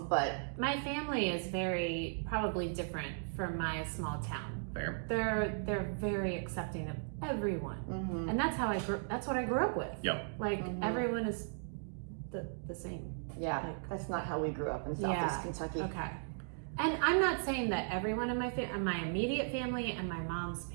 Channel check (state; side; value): silent; left; digital silence